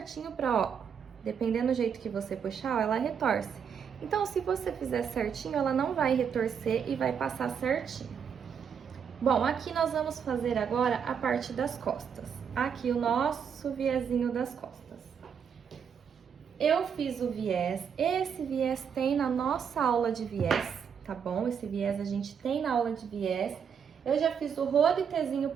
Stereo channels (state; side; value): quieter; left; 7.3 dB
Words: pra, ó, dependendo do jeito que você puxar, ó, ela retorce. Então, se você fizer certinho, ela não vai retorcer e vai passar certinho. Bom, aqui nós vamos fazer agora a parte das costas. Aqui o nosso viezinho das costas. Eu fiz o viés, esse viés tem na nossa aula de viés, tá bom? Esse viés a gente tem na aula de viés. Eu já fiz o rolitezinho